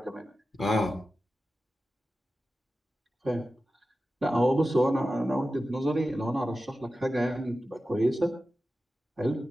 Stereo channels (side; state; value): both; normal; correlation 0.93